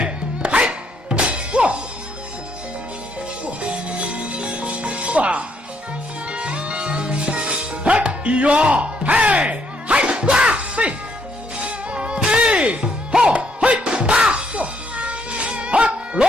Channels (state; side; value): normal; both; correlation 0.72